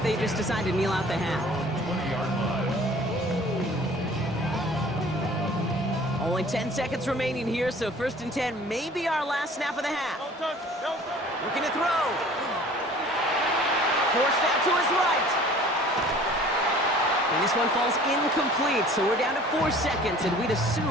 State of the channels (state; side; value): normal; both; correlation 0.49